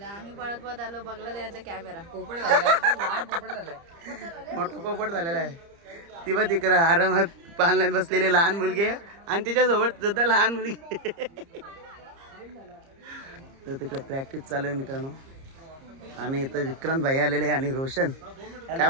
आम्ही पळत आलो, बघला त्याचा कॅमेरा मोठा पोपट झालेला आहे. ती बघ तिकडं आरामात पालण्यात बसलेली लहान मुलगी आहे आणि तिच्यासोबत सुद्धा लहान मुलगी. तर तिकडे प्रॅक्टिस चालू आहे मित्रांनो. आणि इथं विक्रांत भाई आलेले आणि रोशन. काय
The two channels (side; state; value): left; late; 30 ms